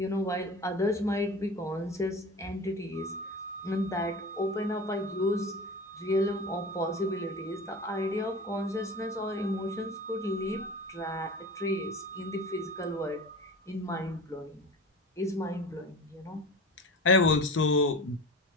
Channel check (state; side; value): normal; both; correlation 0.34